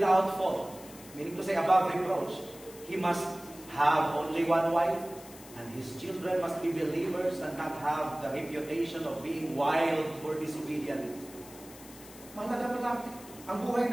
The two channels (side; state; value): left; noise; hiss, 18 dB below the sound